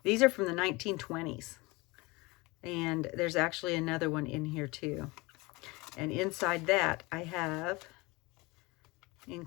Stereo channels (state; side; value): quieter; right; 24.2 dB